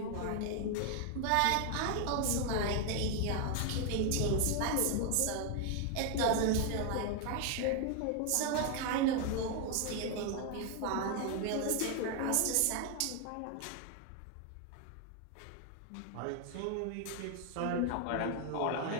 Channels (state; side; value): different; both; correlation 0.00